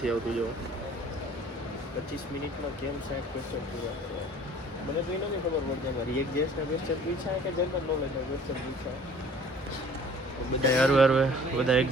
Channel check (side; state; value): both; normal; correlation 0.50